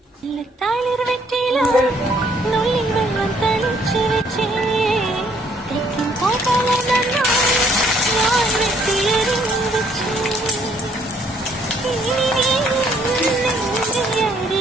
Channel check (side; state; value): both; normal; correlation 0.65